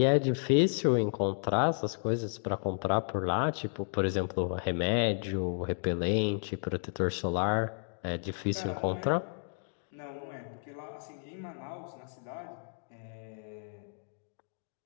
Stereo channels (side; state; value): right; silent; digital silence